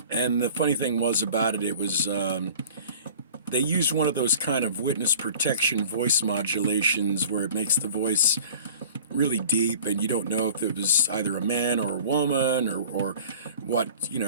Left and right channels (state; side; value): inverted; both; correlation -0.45